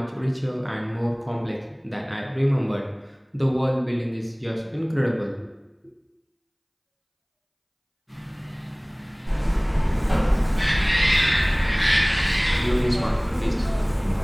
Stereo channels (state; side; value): identical; both; correlation 1.00